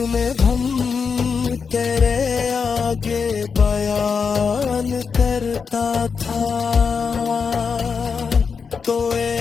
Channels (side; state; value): right; quieter; 5.7 dB